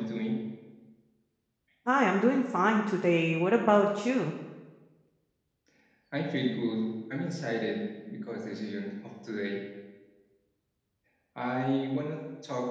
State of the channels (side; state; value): both; identical; correlation 1.00